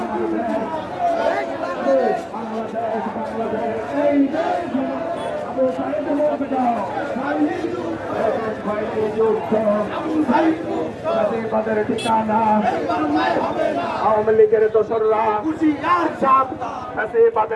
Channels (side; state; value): both; identical; correlation 1.00